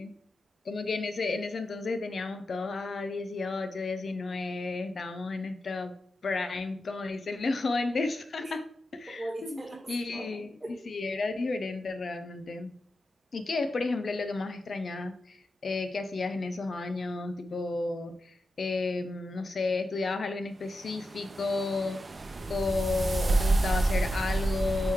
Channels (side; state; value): both; normal; correlation 0.90